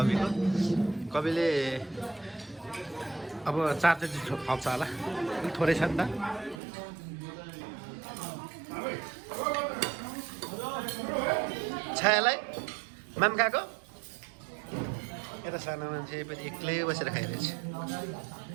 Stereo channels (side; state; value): left; drops out; at 6.6 s